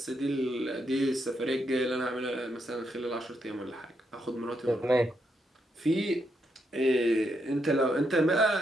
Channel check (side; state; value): both; normal; correlation 0.79